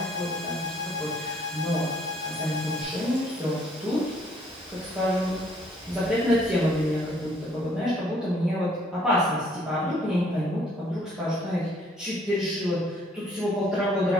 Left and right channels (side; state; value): both; normal; correlation 0.63